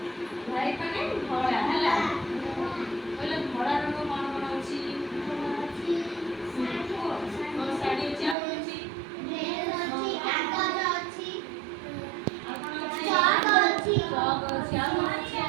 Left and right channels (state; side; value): drops out; left; at 8.3 s